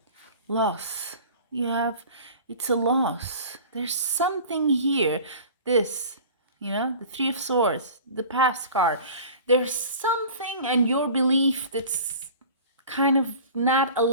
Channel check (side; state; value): both; inverted; correlation -0.41